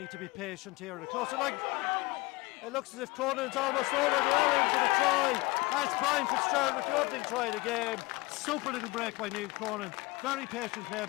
to be patient here. The closer line. It looks as if Cronin's almost over. They are in for the try. That's Brian Fitzgerald with the opening try of the game. Super little break by Neil Cronin. Very patient play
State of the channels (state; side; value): quieter; right; 23.3 dB